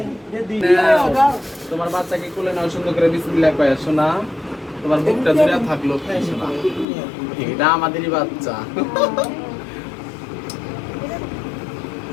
তোমার বাচ্চাকে কোলে নাও, সুন্দর করে বিসমিল্লাহ কয় শোনা, তোমার বুকটা জুড়ে থাকলো শোনা, এটা আমাদেরই বাচ্চা।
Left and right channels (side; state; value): right; drops out; at 6.9 s